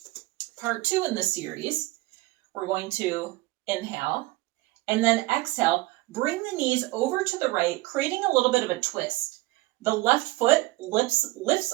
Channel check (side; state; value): left; quieter; 20.3 dB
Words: Part two in this series, we're going to inhale and then exhale. Bring the knees over to the right, creating a little bit of a twist. The left foot